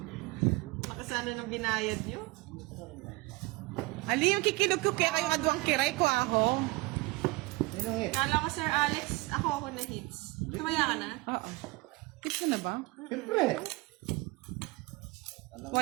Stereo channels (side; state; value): left; quieter; 23.0 dB